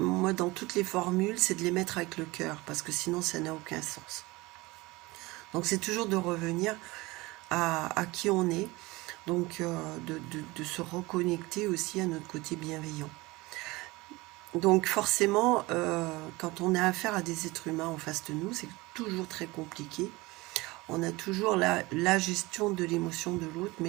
dans toutes les formules, c'est de les mettre avec le cœur, parce que sinon, ça n'a aucun sens. Donc, c'est toujours de revenir à qui on est, donc de se reconnecter aussi à notre côté bienveillant. Donc, forcément, quand on a affaire à des êtres humains en face de nous, c'est toujours très compliqué. On a toujours la gestion de l'émotion de l'autre,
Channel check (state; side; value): quieter; left; 21.9 dB